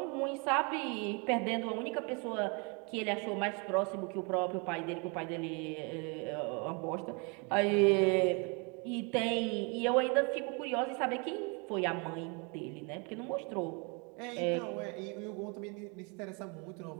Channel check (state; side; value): quieter; left; 32.8 dB